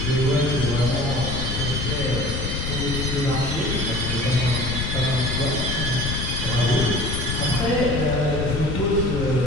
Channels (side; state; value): left; noise; rumble, 2 dB below the sound